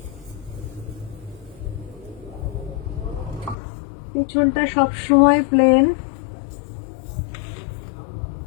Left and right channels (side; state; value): right; drops out; at 3.6 s